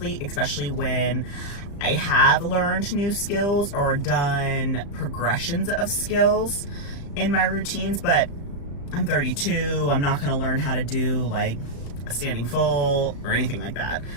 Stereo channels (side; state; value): right; late; 35 ms